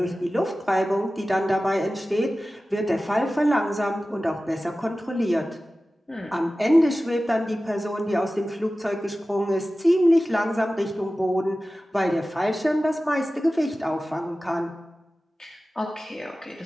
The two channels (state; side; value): normal; both; correlation 0.96